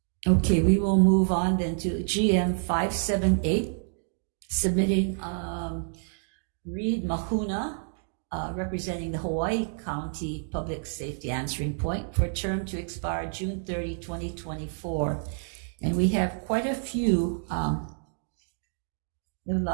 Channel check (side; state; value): left; silent; digital silence